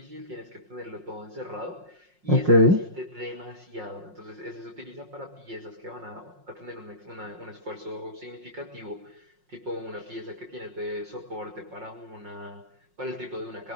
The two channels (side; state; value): left; late; 5.5 ms